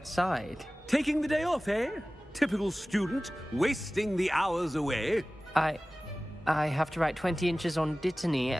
Taking the day off, eh? Typical student, wasting the hours away. I have to write 20 inches on Dittany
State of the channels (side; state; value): both; normal; correlation 0.97